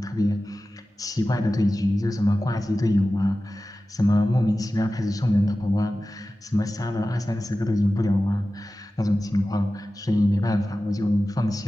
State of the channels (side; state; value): both; normal; correlation 0.95